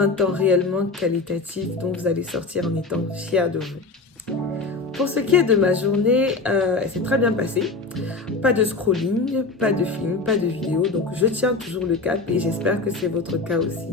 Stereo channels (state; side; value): quieter; right; 3.7 dB